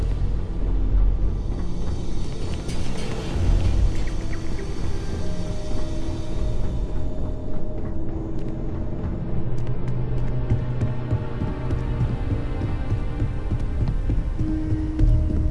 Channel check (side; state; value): both; identical; correlation 1.00